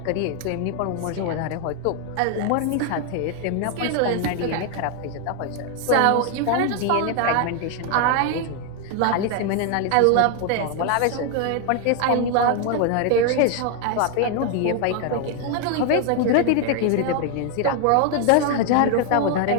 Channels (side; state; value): both; different; correlation 0.01